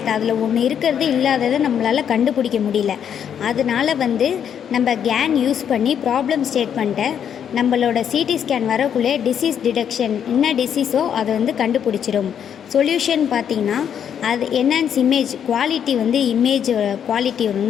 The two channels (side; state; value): right; quieter; 8.6 dB